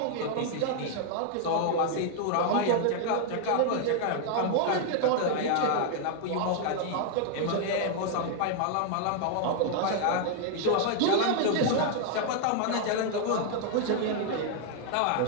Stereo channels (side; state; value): both; different; correlation 0.00